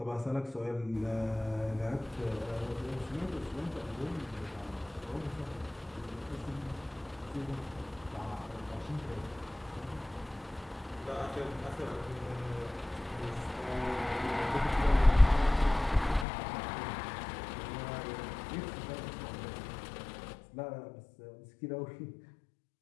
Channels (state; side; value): drops out; right; at 16.2 s